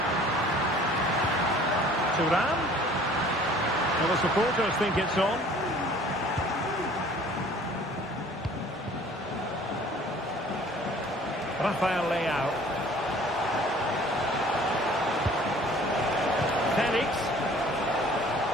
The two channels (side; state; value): both; normal; correlation 0.51